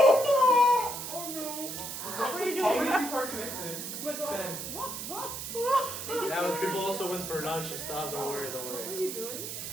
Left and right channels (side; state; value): right; noise; hiss, 7 dB below the sound